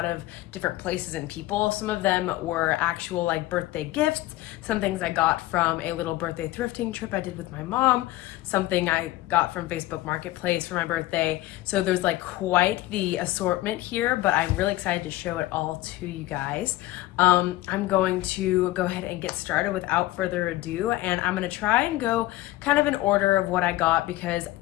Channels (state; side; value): quieter; right; 17.2 dB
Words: of different places and people. Some of them were actual like birthday gifts, some things I got from a little birthday thrifting trip I did with my mom, something I got from Facebook Marketplace for my birthday. So there's like quite the assortment here, but I'm really excited to show it all to you guys. I'm going to go ahead and get started without further ado, and I'm gonna try and go kind of in order of what I got because